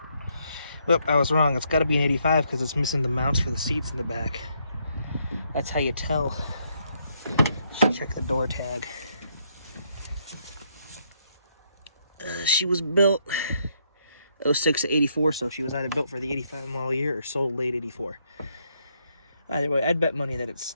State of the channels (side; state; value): both; inverted; correlation -0.74